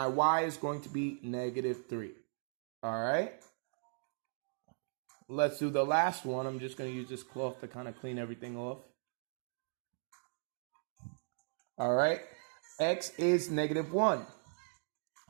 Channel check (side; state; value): left; silent; digital silence